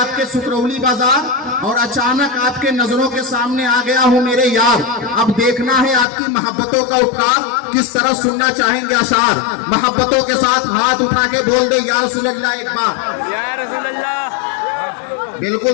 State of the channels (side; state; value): right; drops out; at 6.1 s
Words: सुकरौली बाजार और अचानक आपके नजरों के सामने आ गया हूँ मेरे यार। अब देखना है आपकी मोहब्बतों का उपकार किस तरह सुनना चाहेंगे अशार। मोहब्बतों के साथ हाथ उठा के बोल दे या रसूल अल्लाह एक बार। या रसूल अल्लाह। बिल्कुल